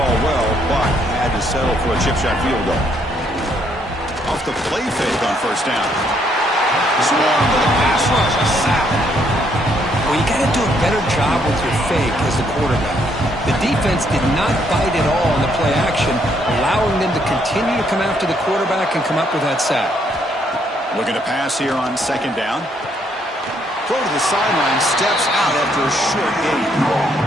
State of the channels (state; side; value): normal; both; correlation 0.71